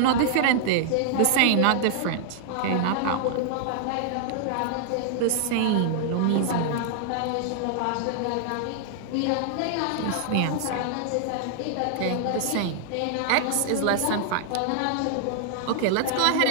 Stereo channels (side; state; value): both; different; correlation -0.01